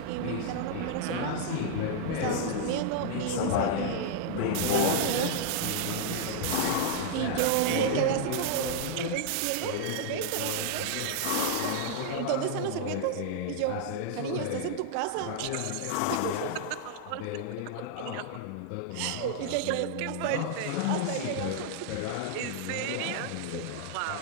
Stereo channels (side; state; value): both; different; correlation -0.01